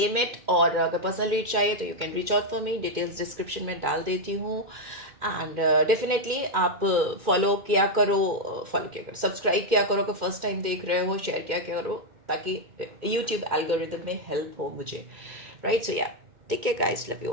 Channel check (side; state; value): left; late; 2.1 ms